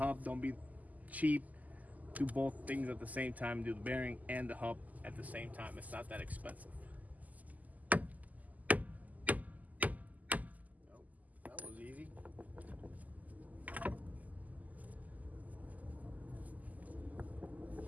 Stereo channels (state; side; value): late; left; 0.078 ms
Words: Don't be cheap. Do both things at the same time. Do the bearing and the hub at the same time. It's not that expensive. Oh, that was easy.